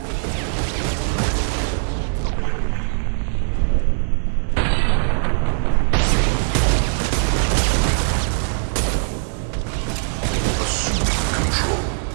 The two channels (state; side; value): silent; left; digital silence